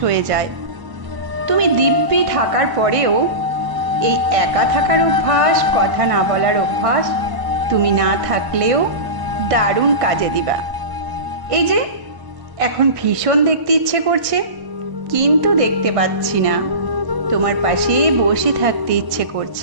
যায়। তুমি দিব্যি থাকার পরেও এই একা থাকার অভ্যাস, কথা না বলার অভ্যাস তুমি না থাকলেও দারুণ কাজে দিবা। এই যে এখন ভীষণ দেখতে ইচ্ছে করছে, কিন্তু দেখতে পাচ্ছি না। তোমার পাশে বসে থাকতে ইচ্ছে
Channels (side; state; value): left; late; 1.5 ms